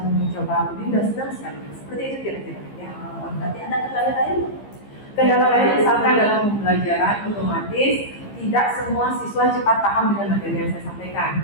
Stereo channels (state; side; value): late; right; 15 ms